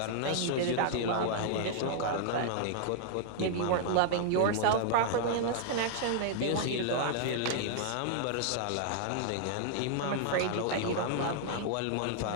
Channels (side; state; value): both; different; correlation -0.01